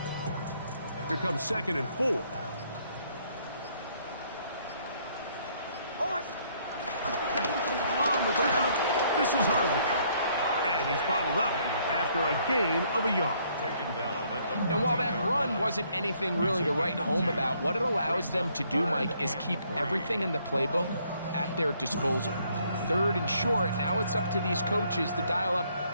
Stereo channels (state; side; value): inverted; both; correlation -0.67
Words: Here comes 2nd and 4. This is Harvey. And he's bottled up after a gain of a yard. And while that run wasn't anything really to write home about, what it allows them to do, Mike, is keep everything in the playbook at their disposal. 3rd and short, now it's up to these coaches to dial